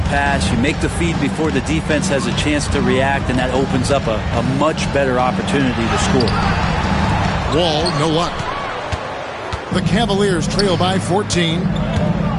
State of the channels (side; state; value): both; identical; correlation 1.00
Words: pass, you make the feed before the defense has a chance to react, and that opens up a much better opportunity to score. Wall, no luck. The Cavaliers trail by 14.